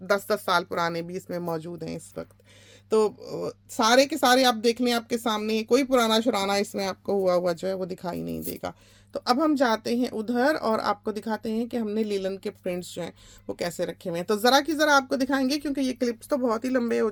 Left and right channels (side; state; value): both; identical; correlation 1.00